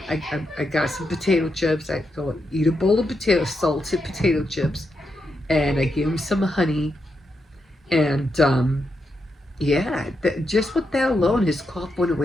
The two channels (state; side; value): normal; both; correlation 0.84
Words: I got some potato chips. I go eat a bowl of salted potato chips, and I gave him some honey. And yeah, just with that alone, his cough went